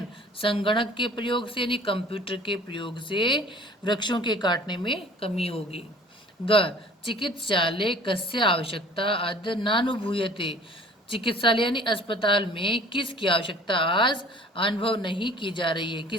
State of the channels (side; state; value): both; normal; correlation 0.50